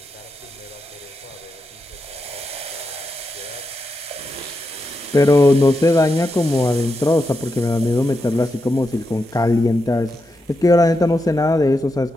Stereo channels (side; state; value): both; normal; correlation 0.86